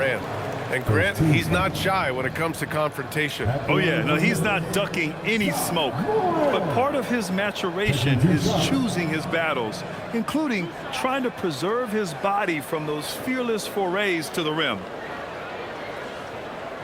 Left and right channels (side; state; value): both; identical; correlation 1.00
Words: And Grant, he's not shy when it comes to confrontation. Oh yeah, no, he's not ducking any smoke. But part of his maturation is choosing his battles, including trying to preserve his body from those fearless forays to the rim.